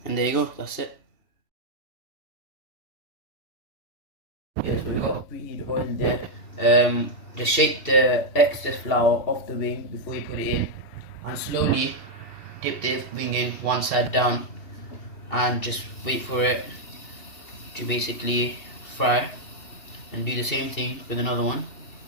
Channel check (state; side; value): late; right; 2.7 ms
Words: And there you go, that's it. Yes, we've got preheated oil there. Just shake the excess flour off the wing before you put it in, and slowly dip the wing in one side down, and just wait for it to basically fry. And do the same thing with another one.